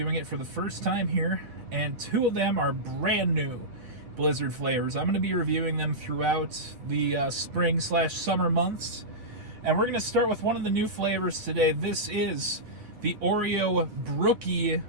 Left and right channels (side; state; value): left; late; 8.8 ms